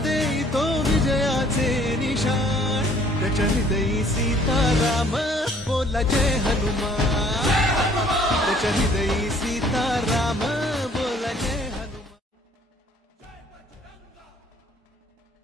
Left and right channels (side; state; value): both; normal; correlation 0.58